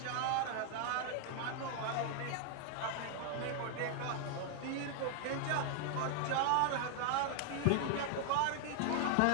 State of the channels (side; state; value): both; different; correlation 0.00